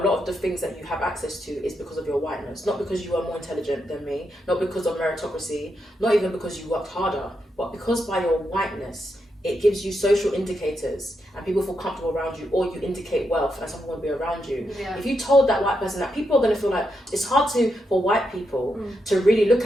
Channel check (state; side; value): normal; both; correlation 0.83